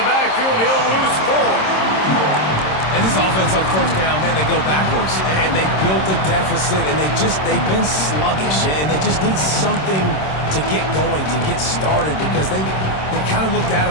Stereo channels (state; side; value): late; right; 26 ms